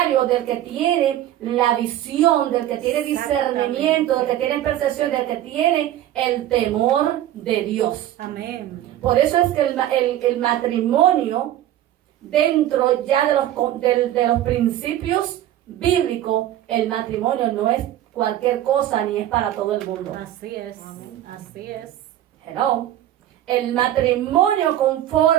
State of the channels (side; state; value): left; quieter; 12.7 dB